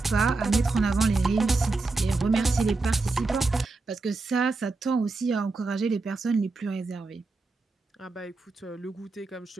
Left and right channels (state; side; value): quieter; left; 3.6 dB